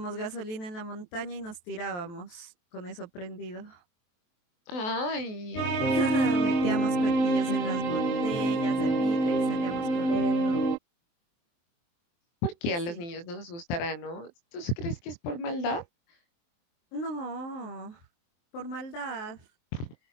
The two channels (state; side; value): late; right; 23 ms